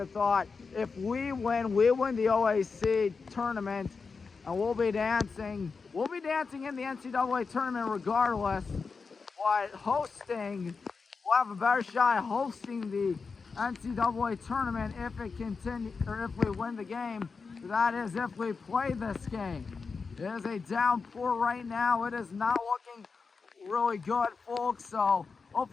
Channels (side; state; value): right; quieter; 4.8 dB